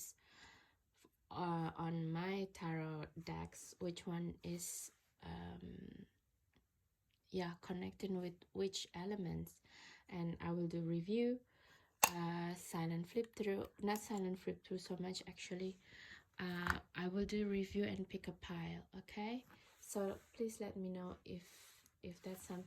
on my tarot decks, which one is connecting with which elements, and I will do review, silent flip through, not silent flip through so much actually. I will do review and pick a pile. Okay, so please let me know if that's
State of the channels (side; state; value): both; identical; correlation 1.00